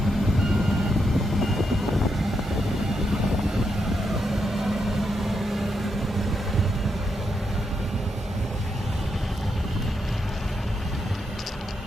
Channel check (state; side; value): normal; both; correlation 0.82